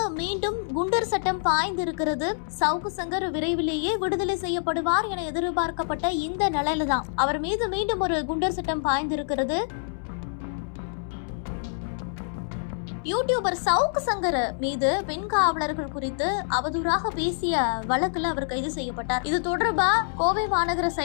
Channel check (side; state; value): right; silent; 61 dB below the other